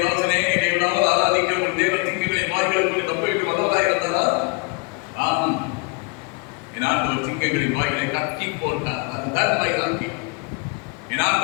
வாசனே, நீ நாள் ஆராதிக்கிற ஒரு தேவ சிங்கங்களை வாய்களுக்கு தப்புவிக்க வல்லவராய் இருந்தாரா? ஆம், என் ஆண்டவர் சிங்கங்களின் வாய்களை கட்டி போட்டார். அதுதான் வைராக்கி. என்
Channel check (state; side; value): quieter; right; 31.7 dB